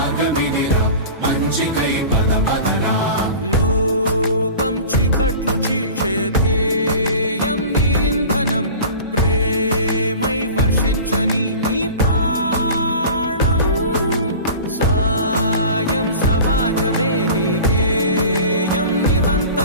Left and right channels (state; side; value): inverted; both; correlation -0.38